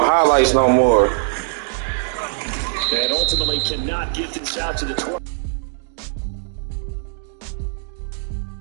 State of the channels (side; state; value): left; silent; digital silence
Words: no more. And ultimately cannot get this out to the 12.